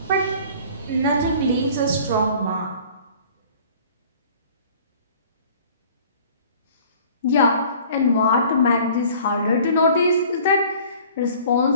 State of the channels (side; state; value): both; inverted; correlation -0.49